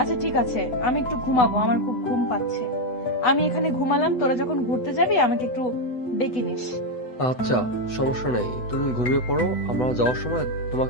ঠিক আছে, আমি একটু ঘুমাবো, আমার খুব ঘুম পাচ্ছে। আমি এখানে ঘুমালাম, তোরা যখন ঘুরতে যাবি আমাকে একটু ডেকে নিস। আচ্ছা, সমস্যা নেই, তুমি ঘুমিয়ে পড়ো। আমরা যাওয়ার সময়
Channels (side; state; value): right; late; 8.0 ms